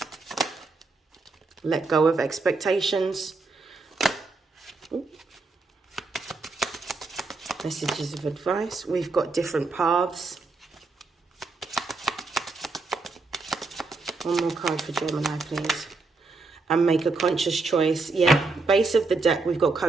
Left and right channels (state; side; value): quieter; left; 3.7 dB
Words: Let go of expectations. Ooh. Messages of advice. We've got different paths. One more card for Gemini, please. And make a conscious choice. Yeah, base of the deck, we've got